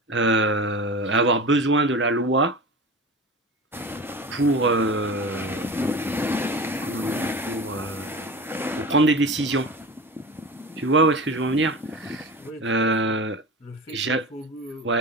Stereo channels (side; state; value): both; normal; correlation 0.31